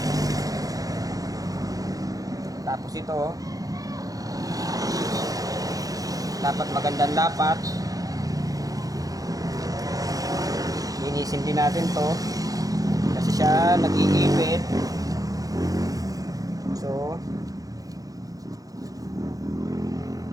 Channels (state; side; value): late; left; 0.17 ms